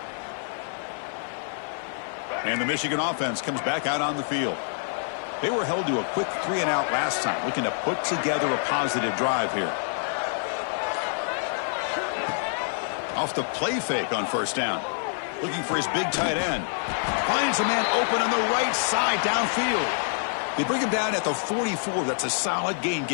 And the Michigan offense comes back out on the field. They were held to a quick 3-and-out last time, looking to put together a positive drive here. Off the play fake on 1st down. Looking for his big tight end. Finds a man open on the right side downfield. They bring him down at the 44. That's a solid gain,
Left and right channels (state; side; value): silent; right; digital silence